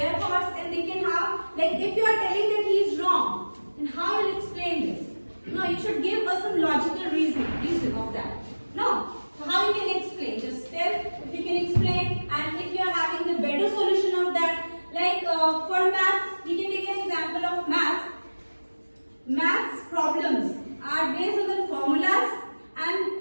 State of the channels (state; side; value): inverted; both; correlation -1.00